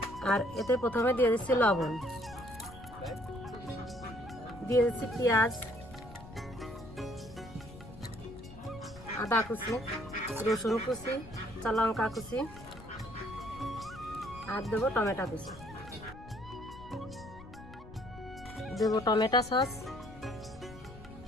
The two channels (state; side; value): noise; left; rumble, 17 dB below the sound